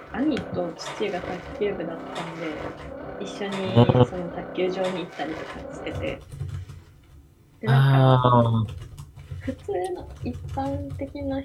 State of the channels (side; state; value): both; identical; correlation 1.00